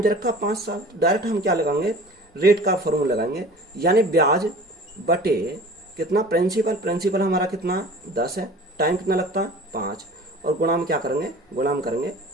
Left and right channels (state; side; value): normal; both; correlation 0.42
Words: दे रखा 5 साल। तो डायरेक्ट हम क्या लगाएंगे, रेट का फॉर्मूला लगाएंगे, यानी ब्याज बटे कितना, प्रिंसिपल हमारा कितना 10 है, टाइम कितना लगता है 5, और गुणा में क्या करेंगे, गुणा में करेंगे